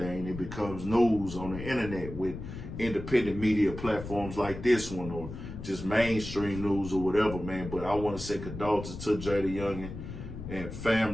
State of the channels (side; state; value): left; noise; rumble, 10 dB below the sound